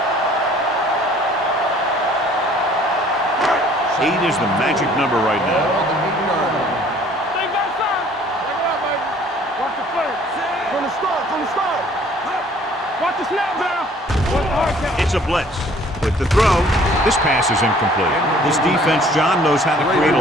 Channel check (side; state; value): both; normal; correlation 0.56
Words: 8 is the magic number right now. They got some. Check it out, baby. Watch the play. From the start. Watch the snap down. Watch the hard count. It's a blitz. With the throw, this pass is incomplete. This defense, John, knows how to create